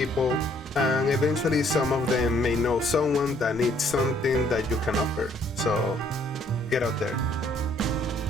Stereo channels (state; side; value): normal; both; correlation 0.64